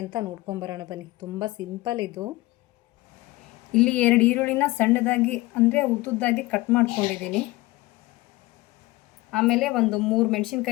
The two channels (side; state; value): right; quieter; 20.1 dB